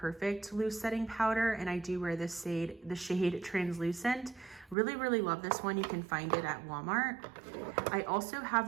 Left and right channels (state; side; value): drops out; left; at 4.8 s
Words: Loose Setting Powder, and I do wear this shade, the shade Translucent. Really, really love this one. You can find it at Walmart. I also